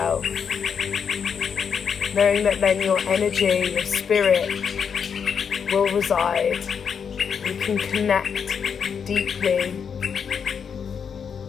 Knowing that then your energy, your spirit will reside. You can connect deeply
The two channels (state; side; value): quieter; right; 6.8 dB